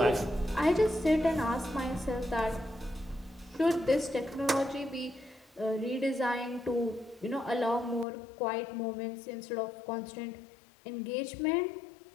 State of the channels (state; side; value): drops out; right; at 8.1 s